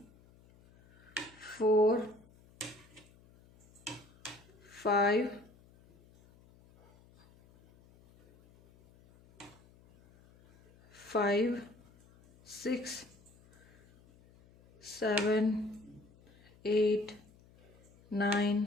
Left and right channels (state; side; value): noise; left; hum, 27 dB below the sound